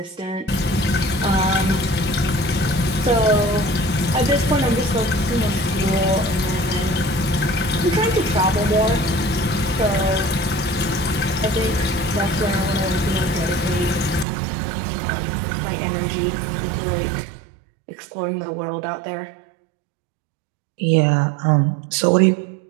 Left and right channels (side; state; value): left; drops out; at 14.2 s